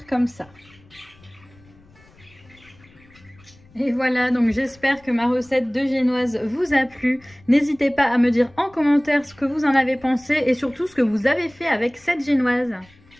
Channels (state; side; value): noise; left; rumble, 27 dB below the sound